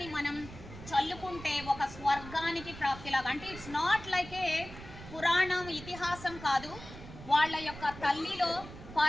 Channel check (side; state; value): right; noise; rumble, 14 dB below the sound